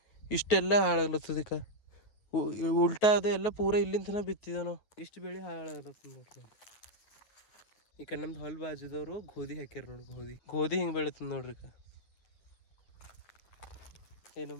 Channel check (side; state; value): right; late; 9.3 ms